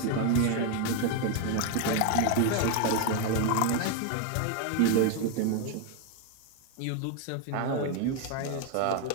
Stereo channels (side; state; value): both; different; correlation 0.01